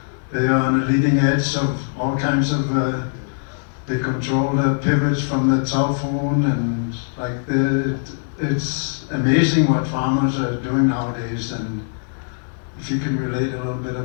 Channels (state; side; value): silent; right; digital silence